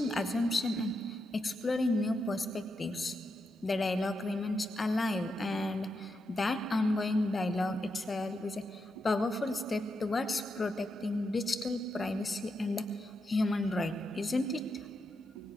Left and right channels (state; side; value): normal; both; correlation 0.85